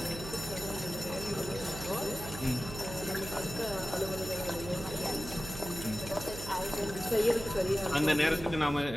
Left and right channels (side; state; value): right; noise; hum, 10 dB below the sound